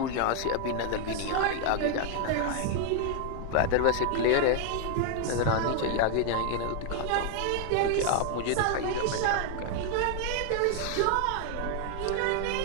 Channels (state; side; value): different; both; correlation 0.00